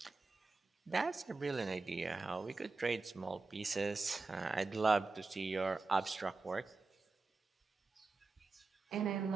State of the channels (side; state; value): left; quieter; 3.9 dB